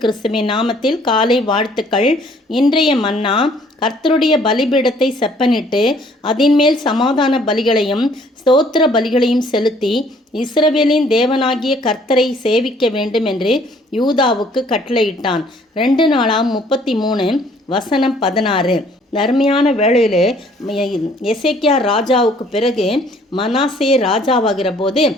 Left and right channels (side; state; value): both; normal; correlation 0.60